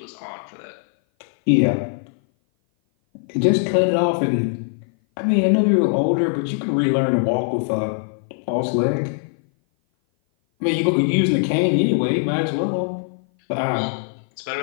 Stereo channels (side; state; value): right; silent; 57 dB below the other